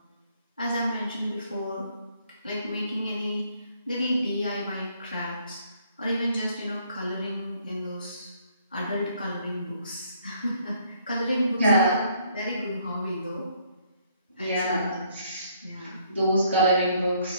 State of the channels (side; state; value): both; inverted; correlation -0.66